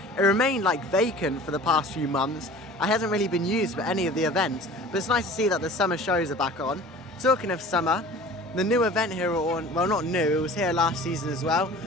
It remained like vacant for the past few months. It hasn't really been used for any of the events, but it's nice to see that the summer shows are back on. Talking of summer, the new event here at Alton, well not new, it was here last season as well.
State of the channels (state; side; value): normal; both; correlation 0.43